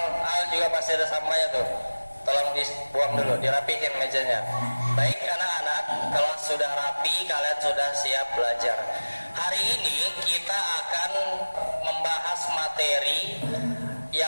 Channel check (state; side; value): inverted; both; correlation -1.00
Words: juga masih ada sampahnya tuh. Tolong dibuang dulu, dirapihin mejanya. Baik anak-anak, kalau sudah rapi, kalian sudah siap belajar. Hari ini kita akan membahas materi